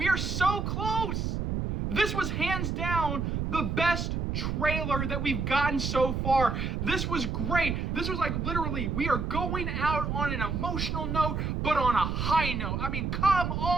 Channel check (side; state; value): right; noise; rumble, 1 dB below the sound